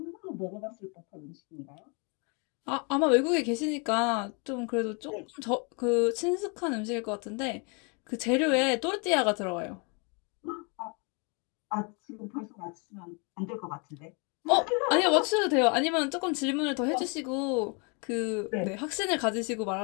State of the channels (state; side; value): quieter; right; 34.0 dB